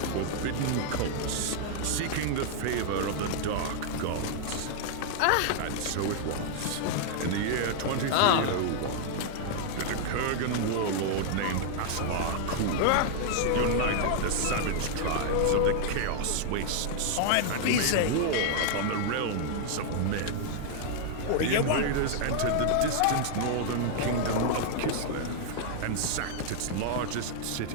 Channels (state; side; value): different; both; correlation -0.01